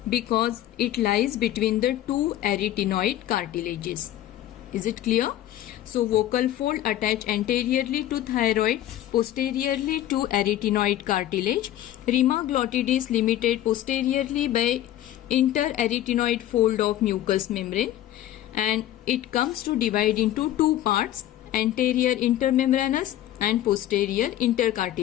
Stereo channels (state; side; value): quieter; right; 13.0 dB